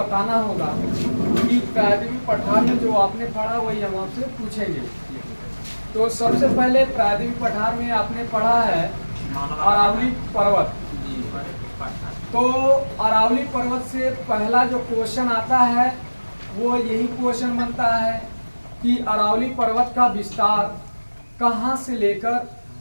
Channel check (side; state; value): both; inverted; correlation -1.00